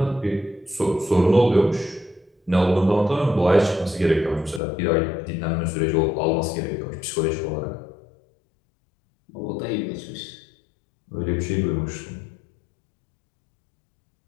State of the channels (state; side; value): drops out; right; at 4.6 s